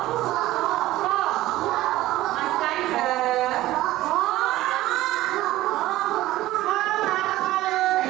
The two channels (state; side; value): quieter; left; 16.2 dB